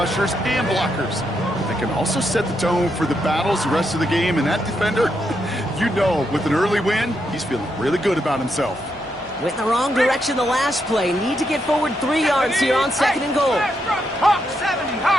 and blockers. They can also set the tone for the battles the rest of the game, and that defender, you know, with an early win, he's feeling really good about himself. Went in the wrong direction the last play. Need to get forward 3 yards here on second and goal. Hawk 70,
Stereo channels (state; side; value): normal; both; correlation 0.81